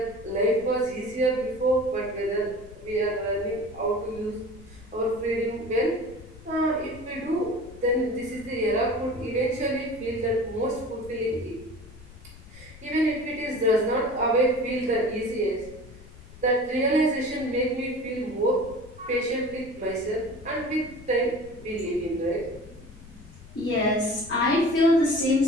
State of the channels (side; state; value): left; noise; rumble, 19 dB below the sound